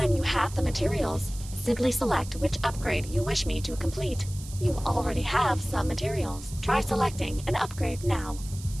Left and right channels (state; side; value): noise; right; hiss, 16 dB below the sound